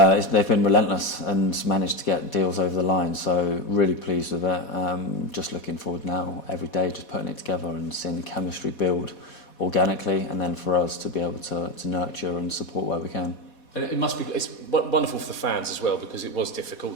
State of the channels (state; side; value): late; right; 4.2 ms